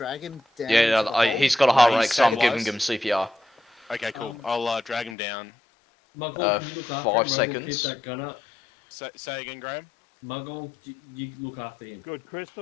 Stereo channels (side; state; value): right; drops out; at 5.2 s